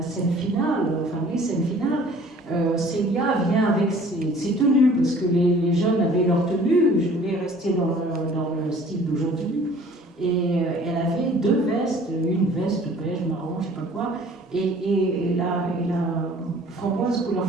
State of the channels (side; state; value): both; normal; correlation 0.51